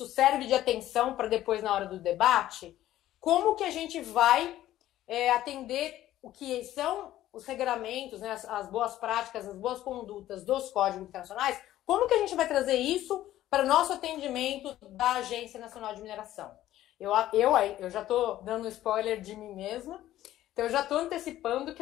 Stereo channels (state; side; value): quieter; right; 13.8 dB